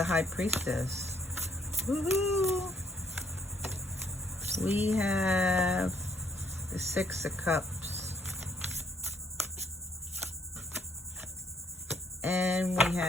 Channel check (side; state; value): both; normal; correlation 0.69